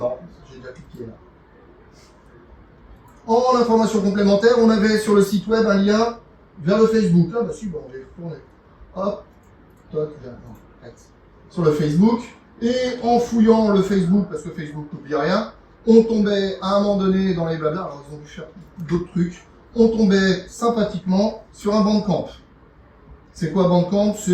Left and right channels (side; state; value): both; identical; correlation 1.00